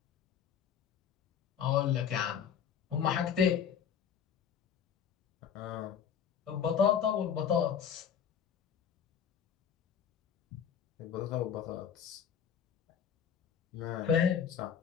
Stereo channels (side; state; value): right; quieter; 8.0 dB